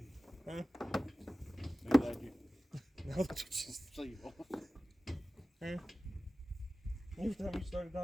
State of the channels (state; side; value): normal; both; correlation 0.96